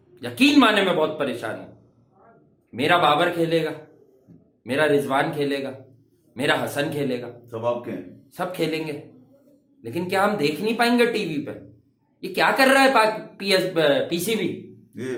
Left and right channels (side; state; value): both; identical; correlation 1.00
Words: यकीन माने मैं बहुत परेशान हूं। मेरा बाबर खेलेगा, मेरा रिजवान खेलेगा, मेरा हसन खेलेगा, सब आपके हैं। सब खेलेंगे, लेकिन क्या हम देख नहीं पाएंगे टीवी पे? ये क्या कर रहा है पीसीबी? ये